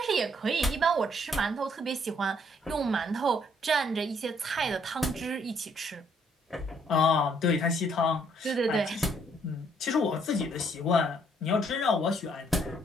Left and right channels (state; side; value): normal; both; correlation 0.67